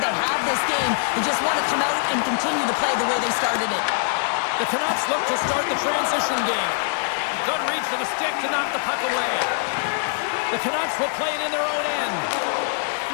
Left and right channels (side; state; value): right; silent; digital silence